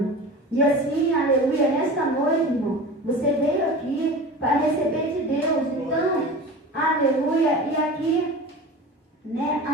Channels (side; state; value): both; normal; correlation 0.34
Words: E assim, aleluia, nessa noite, irmão, você veio aqui para receber de Deus. Então, aleluia. E aqui, né,